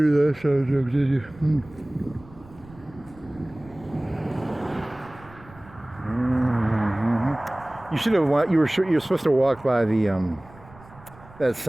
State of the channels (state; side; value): noise; right; rumble, 22 dB below the sound